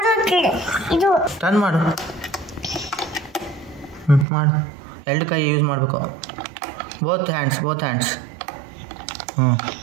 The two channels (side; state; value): left; drops out; at 4.2 s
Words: ಟರ್ನ್ ಮಾಡು. ಮಾಡು. ಎರಡು ಕೈ ಯೂಸ್ ಮಾಡಬೇಕು. Both hands.